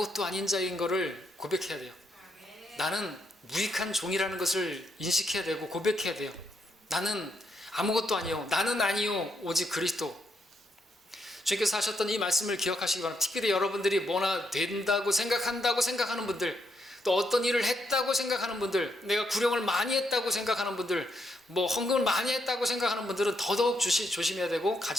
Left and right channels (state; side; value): normal; both; correlation 0.78